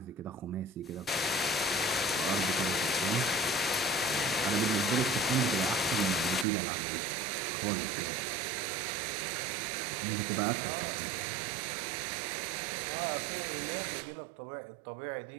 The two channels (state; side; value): drops out; left; at 6.5 s